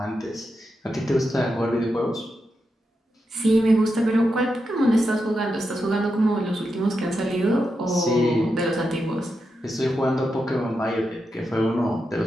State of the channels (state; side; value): normal; both; correlation 0.87